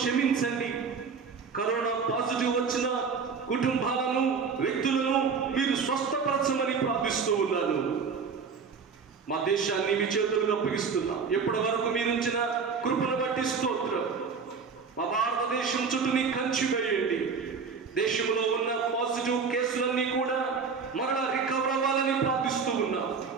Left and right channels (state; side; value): quieter; left; 5.5 dB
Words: కరోనా పాజిటివ్ వచ్చిన కుటుంబాలను, వ్యక్తులను మీరు స్వస్థపరచమని ప్రార్థిస్తూ ఉన్నాను. మా దేశాన్ని మీ చేతులకు అప్పగిస్తున్నా. ఎప్పటి వరకు మీరుంచిన కృపను బట్టి స్తోత్రం. మా భారతదేశం చుట్టూ నీ కంచి వేయండి. దేశంలో ఉన్న పాజిటివ్ కేసులన్నీ కూడా మరలా రికవర్ అవ్వాలని ప్రార్థిస్తూ ఉన్నా.